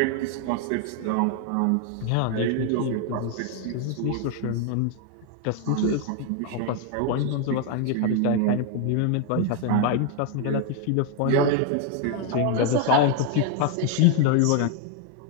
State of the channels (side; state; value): both; different; correlation 0.00